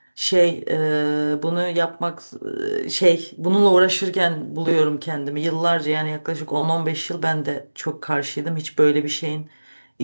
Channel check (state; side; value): inverted; both; correlation -1.00